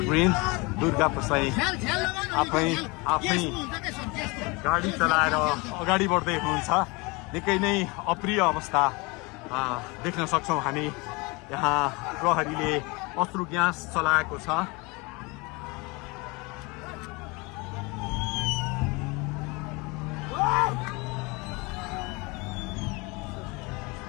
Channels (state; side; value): quieter; right; 26.5 dB